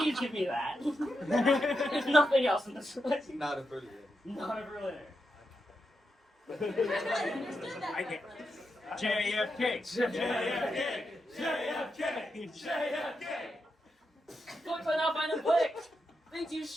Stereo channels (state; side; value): normal; both; correlation 0.86